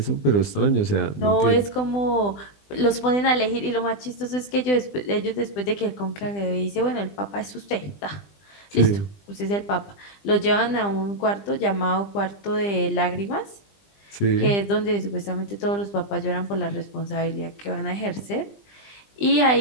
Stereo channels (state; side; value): late; right; 20 ms